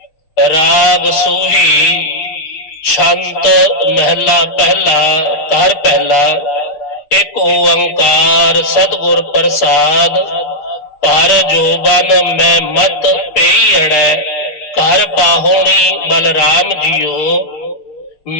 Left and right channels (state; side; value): late; right; 6.6 ms